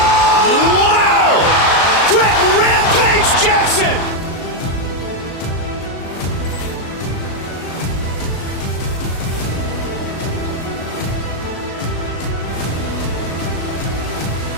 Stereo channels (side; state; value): right; late; 36 ms